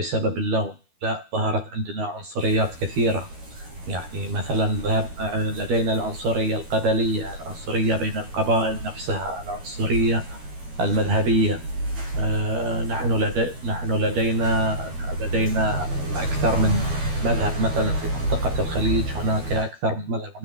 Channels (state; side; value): late; left; 12 ms